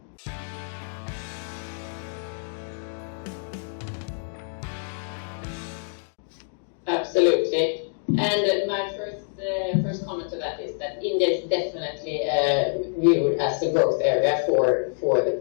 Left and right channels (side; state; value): right; silent; digital silence